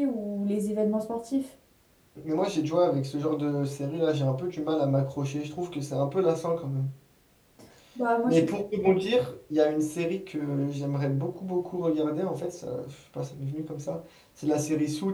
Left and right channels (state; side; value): identical; both; correlation 1.00